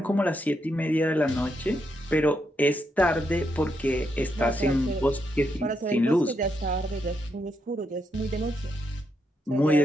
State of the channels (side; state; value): both; normal; correlation 0.80